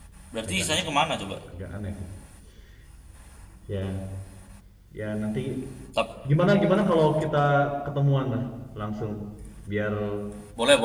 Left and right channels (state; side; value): identical; both; correlation 1.00